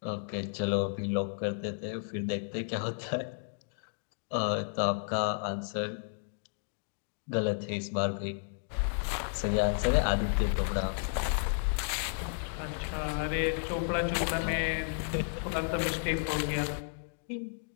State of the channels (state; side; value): silent; right; digital silence